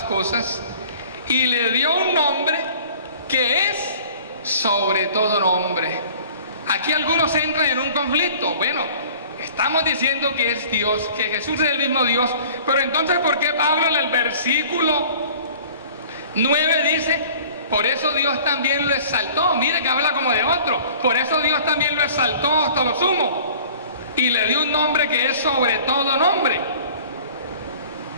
cosas y le dio un nombre que es sobre todo nombre. Aquí algunos entran en un conflicto. Bueno, estamos diciendo que es Dios, que Jesús es el mismo Dios, pero entonces ¿por qué Pablo en el versículo 9 dice: por eso Dios también lo exaltó? Mire que habla como de otro. Por eso Dios también lo exaltó hasta lo sumo y le dio un nombre que es sobre todo nombre.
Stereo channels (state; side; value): inverted; both; correlation -0.48